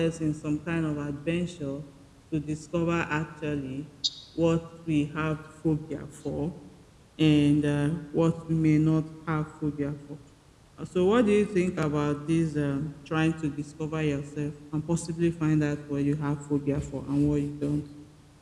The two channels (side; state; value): both; identical; correlation 1.00